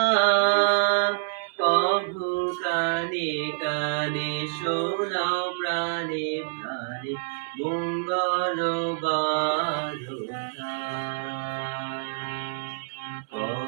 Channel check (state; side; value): silent; left; 60 dB below the other